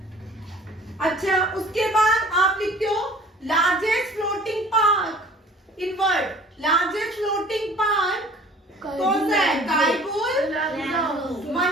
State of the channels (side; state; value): both; normal; correlation 0.50